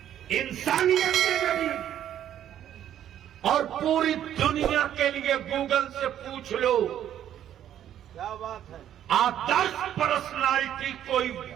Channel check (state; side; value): quieter; left; 10.8 dB